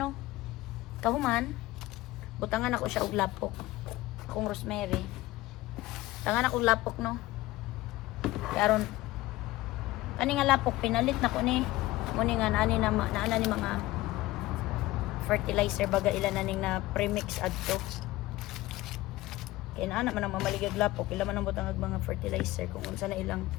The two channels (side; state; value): right; quieter; 17.9 dB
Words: no. Kahuman butangan ako siya og lapok. Akong rosemary. Tangan ako lapok no. Karon ani nga lapok pinalit na ko ni mo ni nga ani na naana ni mga fertilizer baga ilan na ning na premix adto. Kaya na man ang mamaligag lapok, ila man ang butang mga fertilizer kung unsa na ilang